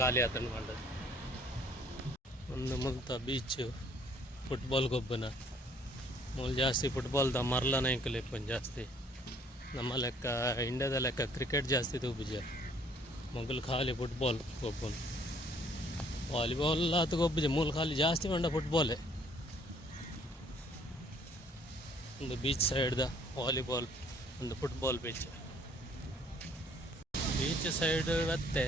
ಆತಂಡು ಮಂಡದು ಒಂದು ಮುಲ್ತ ಬೀಚ್ ಫುಟ್ಬಾಲ್ ಗೊಬ್ಬನ ಮೂಲ ಜಾಸ್ತಿ ಫುಟ್ಬಾಲ್ದ ಮರ್ಲನ ಇಂಕಲಿಪ್ಪನ್ ಜಾಸ್ತಿ ನಮ್ಮ ಲೆಕ್ಕ ಇಂಡಿಯಾದ ಲೆಕ್ಕ ಕ್ರಿಕೆಟ್ ಜಾಸ್ತಿ ತೂಬಿಜ ಮೊಗಲು ಖಾಲಿ ಫುಟ್ಬಾಲ್ ಗೊಬ್ಬನು ವಾಲಿಬಾಲ್ ಆತ ಗೊಬ್ಬಿಜ ಮೂಲ ಖಾಲಿ ಜಾಸ್ತಿ ಮಂಡ ಫುಟ್ಬಾಲೇ ಒಂದು ಬೀಚ್ ಸೈಡ್ದ ವಾಲಿಬಾಲ್ ಒಂದು ಫುಟ್ಬಾಲ್ ಬೀಚ್ ಸೈಡ್ ಮತ್ತೆ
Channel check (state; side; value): normal; both; correlation 0.60